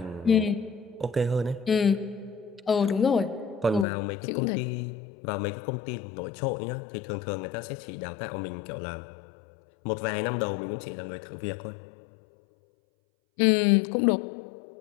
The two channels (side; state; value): right; drops out; at 3.9 s